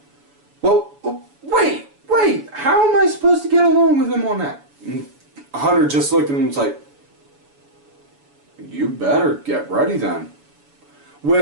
well, wait, how am I supposed to get along with him on that? And Hunter just looked at him and was like, you better get ready then.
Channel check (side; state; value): left; late; 7.0 ms